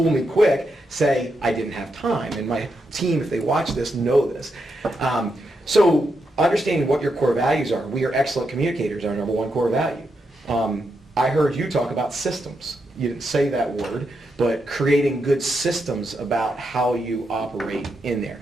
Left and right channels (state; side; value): normal; both; correlation 0.83